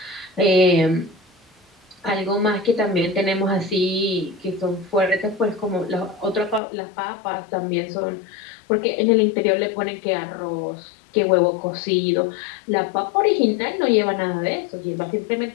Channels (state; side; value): drops out; right; at 6.6 s